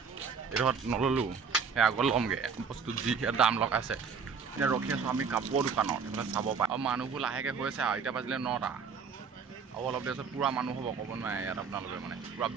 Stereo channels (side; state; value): left; quieter; 5.8 dB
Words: এইডোখৰত নল'লোঁ সেই আগত ল'মগৈ বস্তু যি দাম লগাইছে এতিয়া ৰখি আছোঁ আমি কাপোৰৰ দোকানত সেইবিলাক চাব পাৰে আৰু মানুহবোৰ লাহেকৈ হৈছে আৰু এতিয়া বাজিলে 9টা আৰু অলপ দেৰি পিছত পূৰা মানুহ হ'ব ক'ব নোৱাৰে ইয়াত আপোনালোকে মানে পূৰা